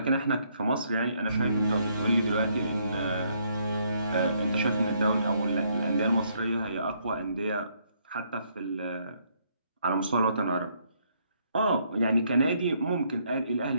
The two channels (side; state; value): both; inverted; correlation -0.71